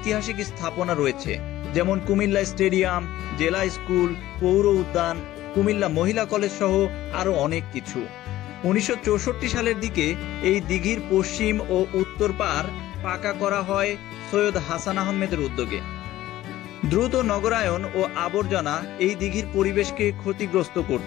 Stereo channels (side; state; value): right; quieter; 15.0 dB